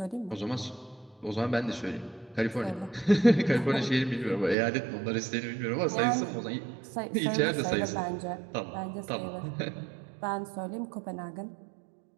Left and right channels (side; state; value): left; drops out; at 4.5 s